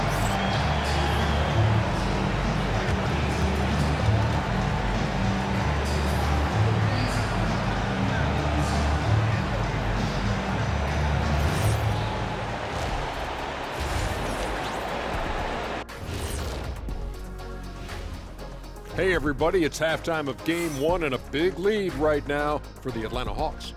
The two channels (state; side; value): identical; both; correlation 1.00